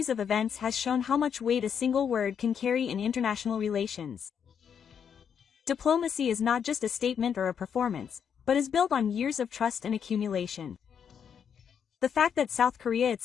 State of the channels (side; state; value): right; quieter; 7.6 dB